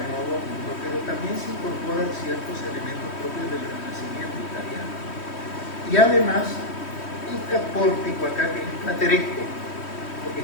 Nuevo Mundo, pero también se incorporan ciertos elementos propios del Renacimiento italiano. Y además, este pórtico acá, que es plateresco, porque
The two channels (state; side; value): late; right; 3.1 ms